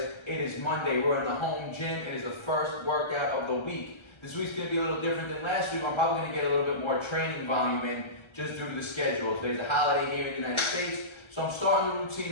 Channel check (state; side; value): late; right; 1.3 ms